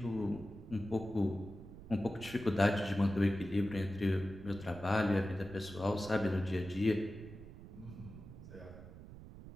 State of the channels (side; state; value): right; noise; rumble, 15 dB below the sound